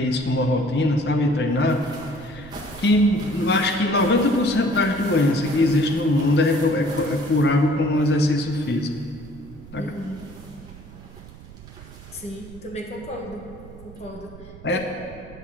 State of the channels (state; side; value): noise; right; rumble, 18 dB below the sound